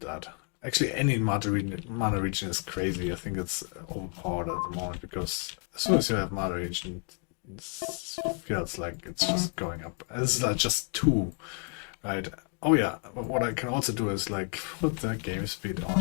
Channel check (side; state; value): right; quieter; 38.9 dB